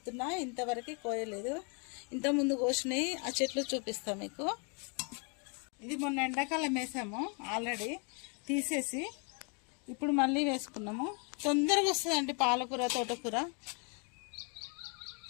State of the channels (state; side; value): quieter; right; 36.2 dB